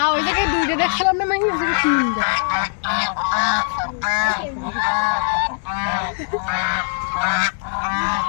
ওই জায়গায় দুইটা দেখছিলাম না, মানে ওই জায়গায় তিনটা।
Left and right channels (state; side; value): silent; right; digital silence